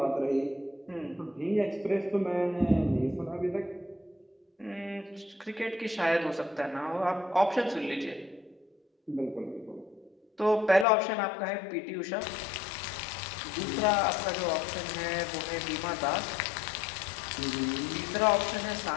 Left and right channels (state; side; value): drops out; right; at 10.9 s